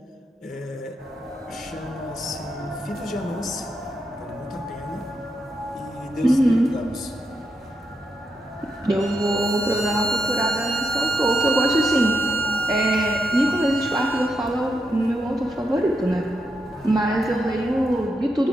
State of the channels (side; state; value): both; normal; correlation 0.82